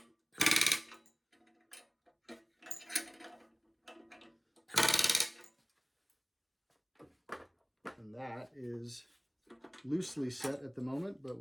And that is loosely set at the moment, but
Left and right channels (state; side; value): identical; both; correlation 1.00